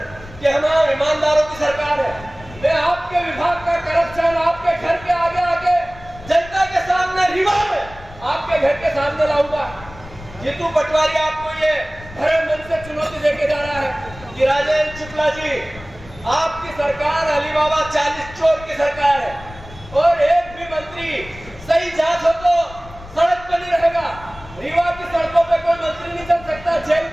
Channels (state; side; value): noise; left; rumble, 18 dB below the sound